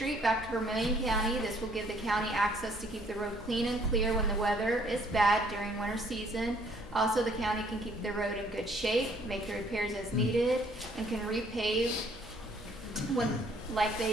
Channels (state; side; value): normal; both; correlation 0.62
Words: back to Vermilion County. This will give the county access to keep the road clean and clear when the weather is bad during winter season. Also, the county can keep the road in good shape, make the repairs as needed, and can repave when, like